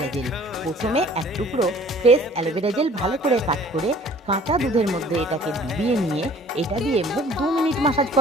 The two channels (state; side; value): normal; both; correlation 0.52